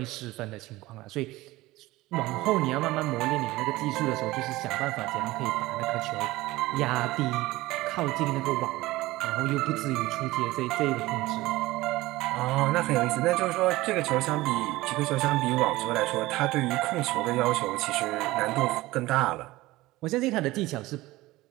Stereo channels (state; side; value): quieter; left; 18.7 dB